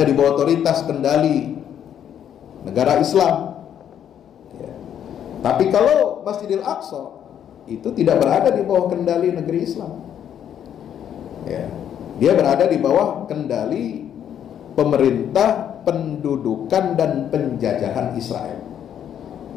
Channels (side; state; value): right; quieter; 9.5 dB